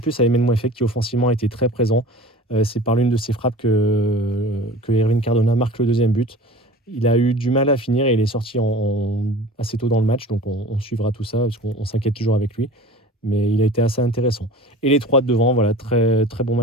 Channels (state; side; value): normal; both; correlation 0.40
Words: plus à Emile Mouefek qui offensivement a été très présent. C'est par l'une de ses frappes que Erwin Cardona marque le deuxième but. Il a eu du mal à finir et il est sorti assez tôt dans le match, donc on suivra tout ça parce qu'on s'inquiète toujours avec lui. Mais il a été assez intéressant. Et les trois de devant, voilà, très, très bon